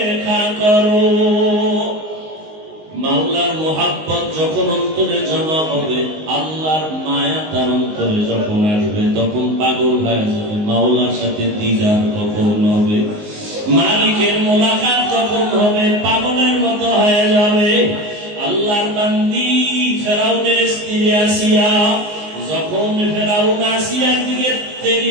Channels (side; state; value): left; late; 19 ms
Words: करो। মাওলার মোহাব্বত যখন অন্তরে জমা হবে, আল্লাহর মায়া তার অন্তরে যখন আসবে, তখন পাগল হয়ে যাবে। মাওলার সাথে দিদার কখন হবে, মালিকের মোলাকাত যখন হবে, পাগলের মতো হয়ে যাবে। আল্লাহর বান্দি ফেরাউনের স্ত্রী আসিয়া, যখন ফেরাউন আসিয়ার দিকে